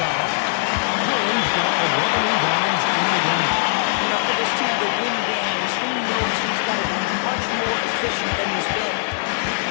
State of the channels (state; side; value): silent; right; 58 dB below the other